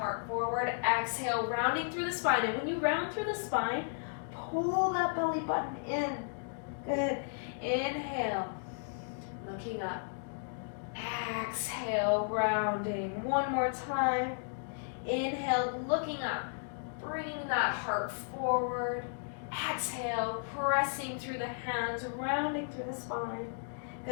forward. Exhale, rounding through the spine. And when you round through the spine, pull that belly button in. Good. Inhale, looking up. Exhale, rounding. One more time. Inhale, looking up, bringing that heart forward. Exhale, pressing through the hands, rounding through the spine.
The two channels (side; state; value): right; silent; digital silence